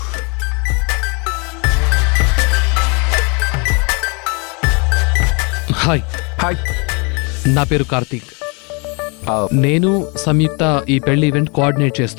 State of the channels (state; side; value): quieter; right; 32.5 dB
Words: Hi, hi. నా పేరు కార్తీక్. ఆ, నేను సంయుక్త ఈ పెళ్లి ఈవెంట్ కోఆర్డినేట్